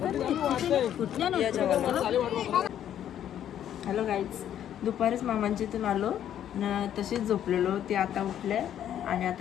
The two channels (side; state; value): right; quieter; 10.5 dB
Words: हॅलो गाईज, दुपारीच मामांच्या इथून आलो न तशीच झोपलेलो. ते आता उठले आणि